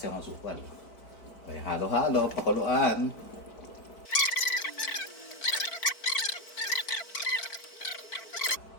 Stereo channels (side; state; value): right; late; 4.5 ms